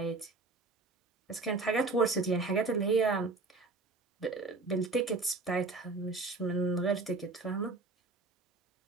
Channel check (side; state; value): left; quieter; 3.7 dB